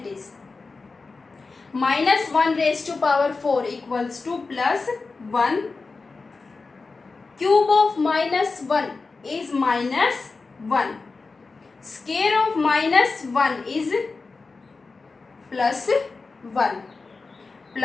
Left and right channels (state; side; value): quieter; right; 4.1 dB